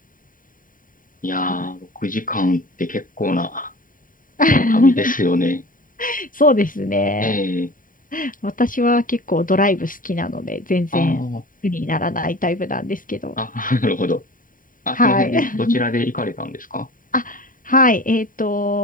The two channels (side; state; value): right; late; 0.39 ms